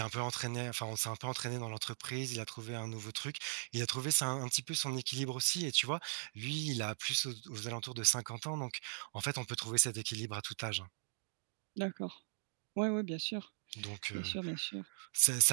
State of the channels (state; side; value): silent; left; digital silence